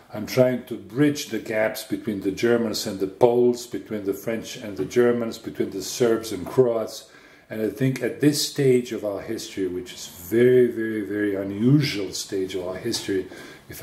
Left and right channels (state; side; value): identical; both; correlation 1.00